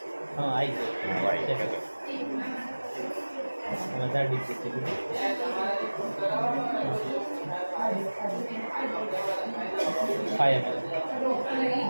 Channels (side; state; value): both; inverted; correlation -1.00